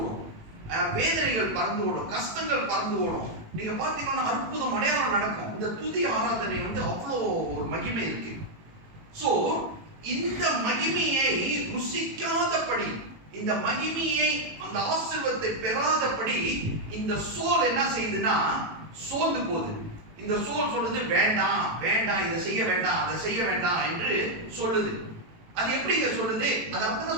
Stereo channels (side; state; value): left; late; 18 ms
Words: வேதனைகள் பறந்து ஓடும், கஷ்டங்கள் பறந்து ஓடும். நீங்க பாத்தீங்கன்னா அற்புதம் அடையாளம் நடக்கும். இந்த துதி ஆராதனை அவ்வளோ ஒரு மகிமை இருக்கு. சோ இந்த மகிமையை ருசிக்காதபடி, இந்த மகிமையை, அந்த ஆசீர்வாதத்தை பெறாதபடி இந்த சோல் என்ன செய்யுதுன்னா சோர்ந்து போகுது. இந்த சோல் சொல்லுது, வேண்டாம் வேண்டாம், இதை செய்ய வேண்டாம், அதை செய்ய வேண்டாம் என்று சொல்லுது. அது எப்படிங்க சொல்லுது? அது